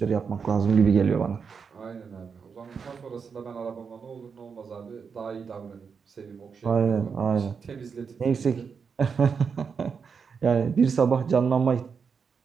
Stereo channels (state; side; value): quieter; left; 5.9 dB